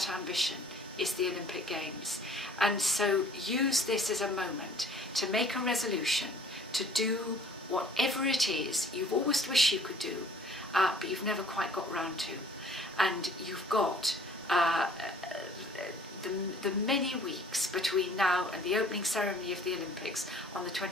ambition is the Olympic Games. And so use this as a moment to make a resolution to do whatever it is you've always wished you could do, but you've never quite got round to. And you've got the many weeks between now and the opening ceremony of the Olympics on the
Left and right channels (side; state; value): both; normal; correlation 0.54